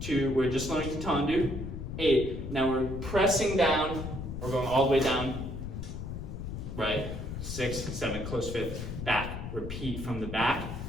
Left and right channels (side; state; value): left; noise; rumble, 6 dB below the sound